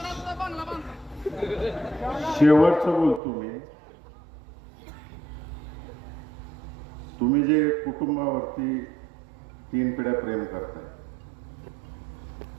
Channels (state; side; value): drops out; left; at 3.2 s